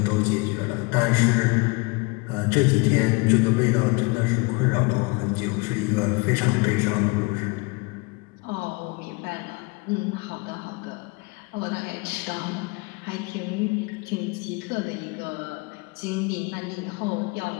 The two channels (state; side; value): quieter; right; 27.3 dB